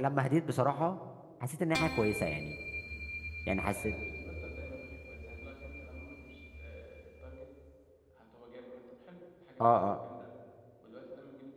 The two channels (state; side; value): identical; both; correlation 1.00